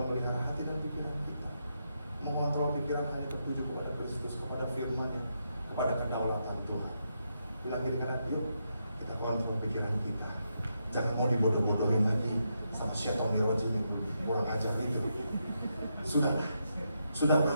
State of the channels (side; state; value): both; inverted; correlation -0.82